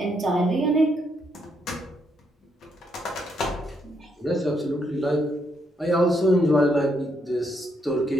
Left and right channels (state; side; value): normal; both; correlation 0.76